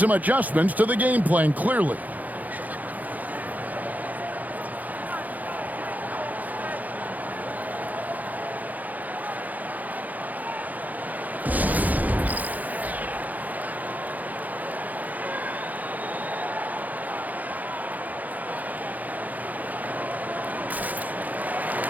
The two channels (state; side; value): late; left; 0.080 ms